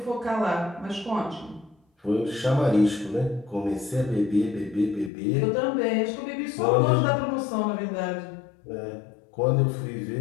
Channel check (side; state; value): right; drops out; at 5.1 s